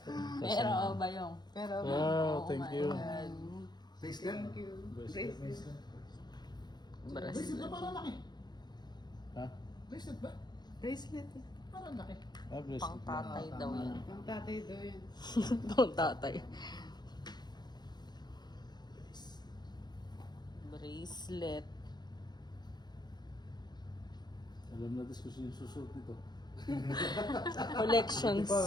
Pero ba yung? Pero Wow, thank you. Bracelet? Bracelet. Bracelet na parang laki. Ha? Bracelet ba? bracelet. Parang laki. Ah, bracelet. Pang tatay daw yan. Ang tatay daw yan. Pang tatay. Bracelet. Alam na diskusyon yung susunod nito. Collections.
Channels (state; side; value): late; right; 0.21 ms